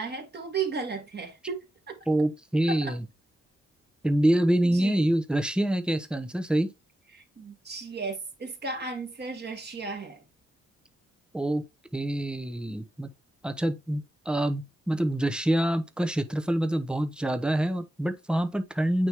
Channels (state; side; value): normal; both; correlation 0.91